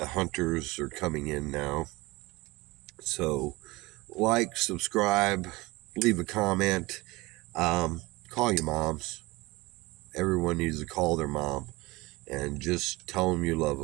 hunters are coming in now, so like, subscribe, leave a comment, call your moms. Everyone needs to call their mom and just tell them you love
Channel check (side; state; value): left; quieter; 22.2 dB